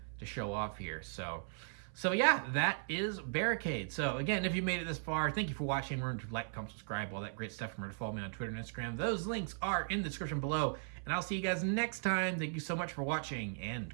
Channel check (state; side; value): silent; left; 53 dB below the other